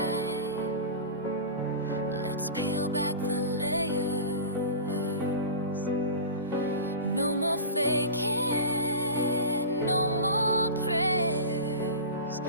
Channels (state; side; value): inverted; both; correlation -0.31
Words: let's peel back the layers. No more faking, no more prayers